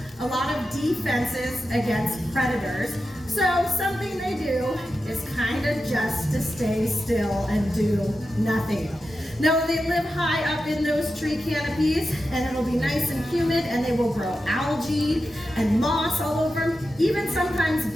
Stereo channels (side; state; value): both; normal; correlation 0.91